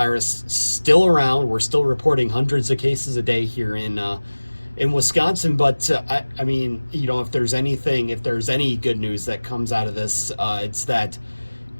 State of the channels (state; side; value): inverted; both; correlation -1.00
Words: still around. We're still reporting hundreds of cases a day here in Wisconsin. But I mean, if there's any good news that comes out of this, it's that